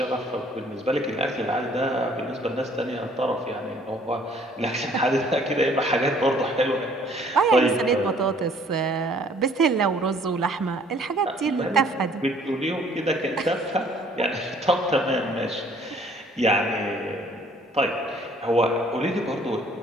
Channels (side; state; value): both; normal; correlation 0.58